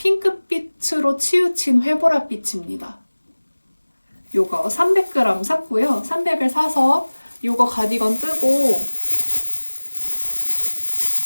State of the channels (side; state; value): both; inverted; correlation -1.00